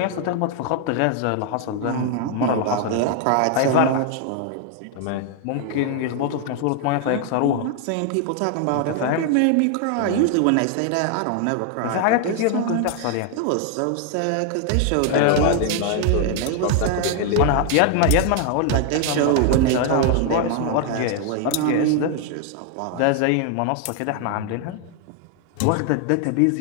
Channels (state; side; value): different; both; correlation 0.00